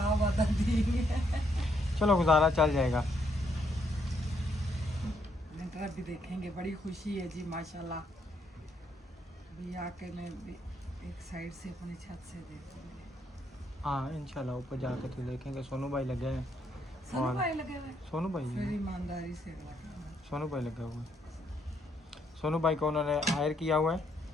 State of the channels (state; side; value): normal; both; correlation 0.74